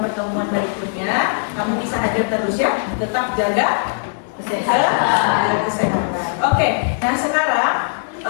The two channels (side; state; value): right; silent; 66 dB below the other